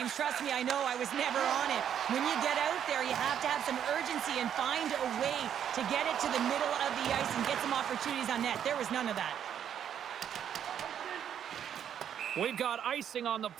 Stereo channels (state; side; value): quieter; left; 9.2 dB